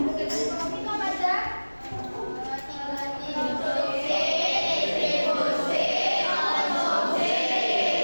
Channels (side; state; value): both; inverted; correlation -1.00